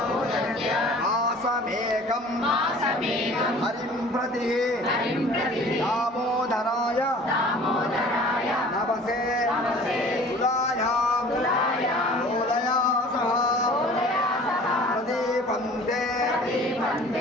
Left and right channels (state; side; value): normal; both; correlation 0.47